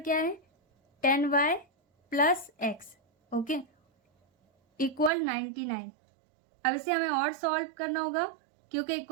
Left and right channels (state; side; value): drops out; left; at 5.1 s